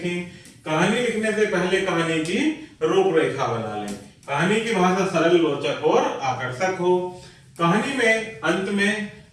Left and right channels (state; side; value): identical; both; correlation 1.00